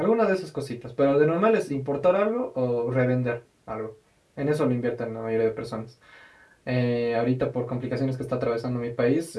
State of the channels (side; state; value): both; identical; correlation 1.00